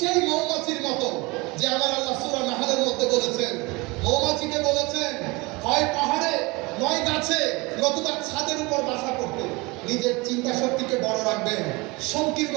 মৌমাছির মতো যে আমার আল্লাহ সূরা নাহলের মধ্যে বলেছেন, মৌমাছিকে বলেছেন হয় পাহাড়ে নয় গাছে নতুবা ছাদের উপর বাসা করতে। নিজের চিন্তা শক্তিকে বড় রাখবেন, সংকীর্ণ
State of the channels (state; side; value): quieter; left; 24.8 dB